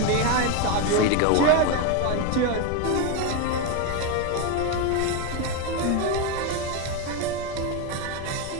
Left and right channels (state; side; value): different; both; correlation 0.03